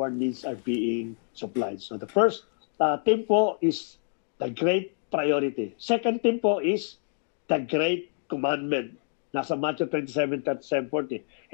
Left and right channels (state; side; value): silent; right; digital silence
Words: needs are being supplied. So the first theme po is the great priority. Second theme po is the great commandment. Nasa Matthew 27:37-40.